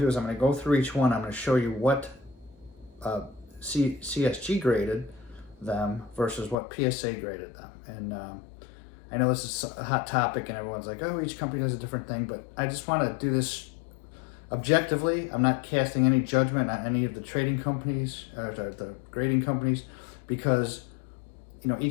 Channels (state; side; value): drops out; right; at 6.6 s